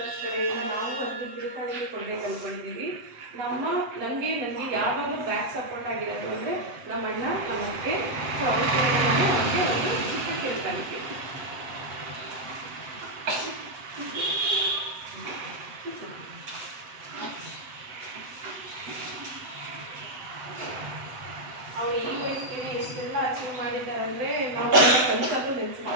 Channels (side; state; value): left; late; 8.0 ms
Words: ಕಡೆಯಿಂದ ನಾವು ಒಂದು ತಿರುಕಾಣಿಕೆ ಕೊಂಡೇ ಕಲ್ಕೊಂಡಿದ್ದೀವಿ. ನನಗೆ ಯಾವಾಗ ಬ್ಯಾಕ್ ಸಪೋರ್ಟ್ ಆಗಿರೋದು ಅಂದರೆ ನಮ್ಮ ಅಣ್ಣ, ನಮ್ಮ ಅತ್ತೆ, ಸೊ ಅವ್ರ ಕಡೆಯಿಂದ ನಾನು ಅವ್ರಿಗೆ ಒಂದು ಚಿಕ್ಕ ತಿರುಕಾಣಿಕೆ. ಅವರು ಈ ವಯಸ್ಸಿಗೆ ಎಷ್ಟೆಲ್ಲ ಅಚೀವ್ ಮಾಡಿದ್ದಾರೆ ಅಂದರೆ